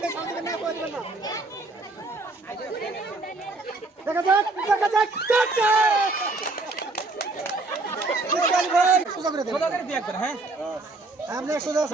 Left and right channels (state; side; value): quieter; left; 3.2 dB